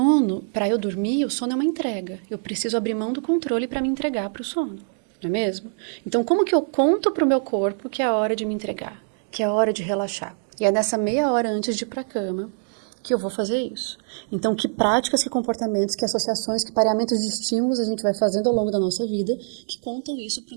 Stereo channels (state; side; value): silent; left; digital silence